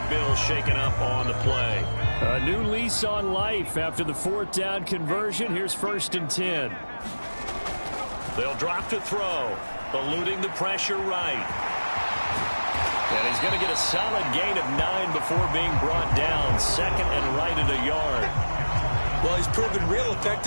Bill shaken up on the play. A new lease on life after the 4th down conversion. Here's 1st and 10. They'll drop to throw, eluding the pressure right. And he's going to get a solid gain of 9 before being brought down. 2nd and right at a yard. Well, he's proven real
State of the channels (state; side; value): inverted; both; correlation -1.00